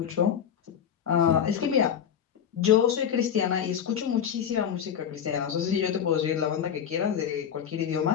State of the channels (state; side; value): quieter; right; 8.6 dB